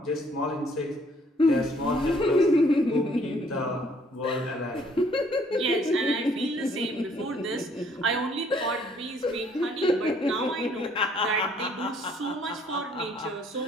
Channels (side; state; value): both; normal; correlation 0.63